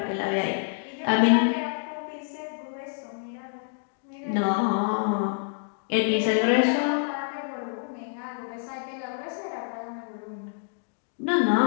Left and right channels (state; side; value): silent; right; digital silence